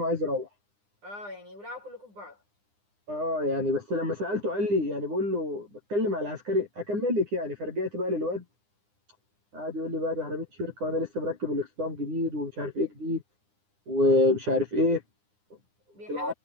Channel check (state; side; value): late; left; 9.8 ms